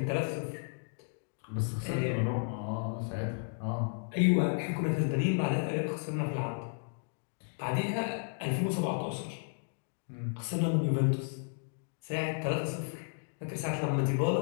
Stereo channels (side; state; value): right; silent; digital silence